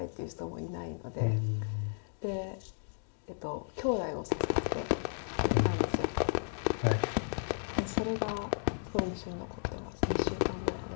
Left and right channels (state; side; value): silent; right; digital silence